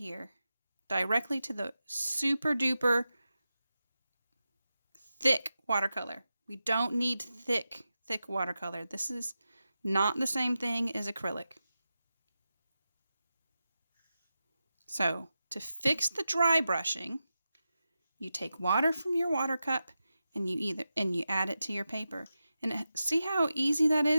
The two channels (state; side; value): inverted; both; correlation -0.91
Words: directly to the super duper thick watercolor. We don't need thick watercolor. This is not the same thing as acrylic. So to fix the dry brushing, you take water from your water cup and you add it to your paper. And see how easy that